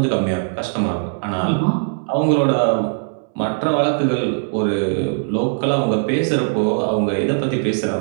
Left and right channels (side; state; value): left; silent; digital silence